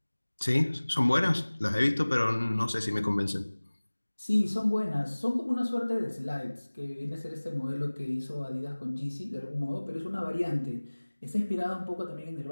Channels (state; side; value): inverted; both; correlation -1.00